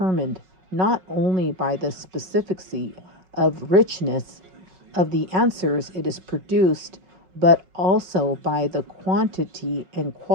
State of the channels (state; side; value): late; left; 5.4 ms